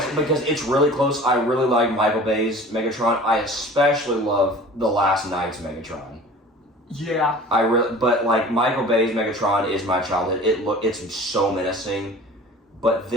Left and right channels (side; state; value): both; normal; correlation 0.43